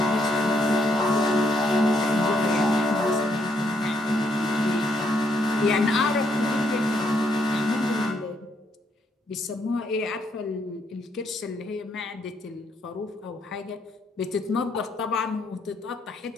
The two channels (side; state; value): both; normal; correlation 0.73